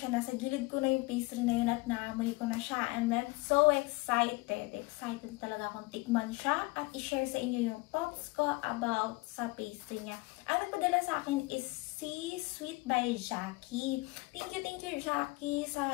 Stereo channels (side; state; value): right; quieter; 24.0 dB